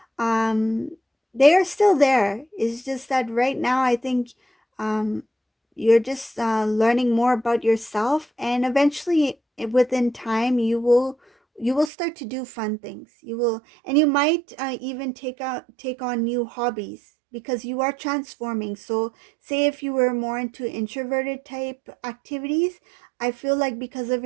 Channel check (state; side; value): drops out; left; at 11.9 s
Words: um they are still there. It's just that right now I think um you're just learning more about yourself, and eventually within time you will start to do fun things. You will, and you might even take on new hobbies, because you are transforming. So say if you were more into introverted type activities, I feel like because of